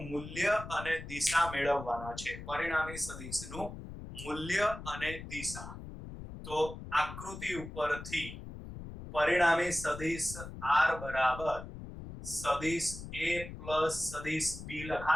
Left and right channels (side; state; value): left; noise; rumble, 11 dB below the sound